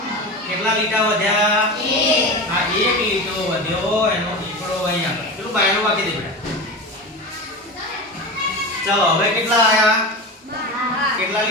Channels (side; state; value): both; normal; correlation 0.26